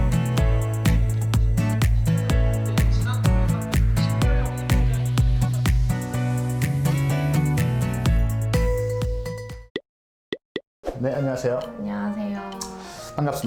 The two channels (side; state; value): both; identical; correlation 1.00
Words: 네, 안녕하세요. 안녕하세요.